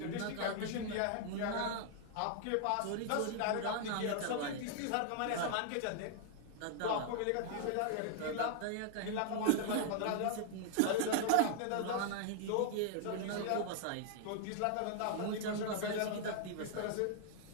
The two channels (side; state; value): both; different; correlation 0.00